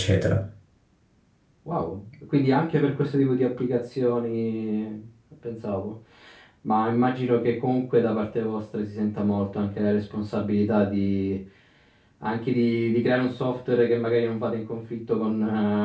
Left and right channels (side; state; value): both; identical; correlation 1.00